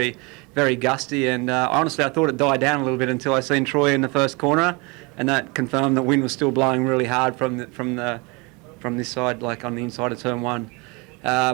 very gusty. And honestly, I thought it died down a little bit until I seen Troy in the first corner, and that confirmed that wind was still blowing really hard from this side, like on the inside of turn one.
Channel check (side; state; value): left; quieter; 28.1 dB